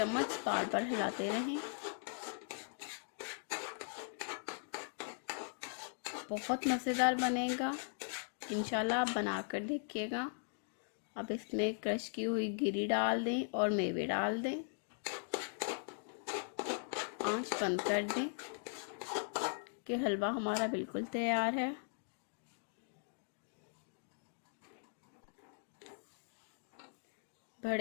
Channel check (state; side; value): silent; right; digital silence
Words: बार बार हिलाते रहें। बहुत मज़ेदार बनेगा। इंशाल्लाह आप बना कर देखिएगा। अब इसमें क्रश की हुई गिरी डाल दें और मेवे डाल दें। आंच बंद कर दें कि हलवा हमारा बिल्कुल तैयार है।